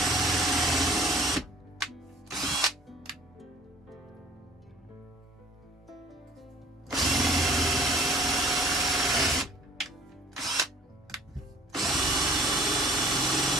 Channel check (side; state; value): both; normal; correlation 0.51